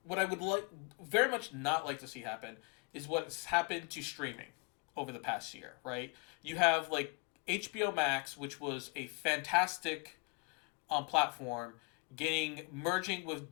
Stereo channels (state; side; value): quieter; right; 33.2 dB